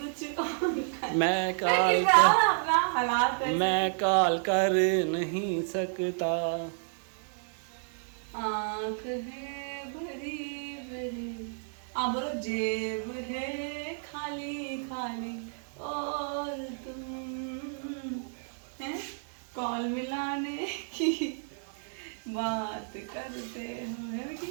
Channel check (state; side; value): silent; left; 57 dB below the other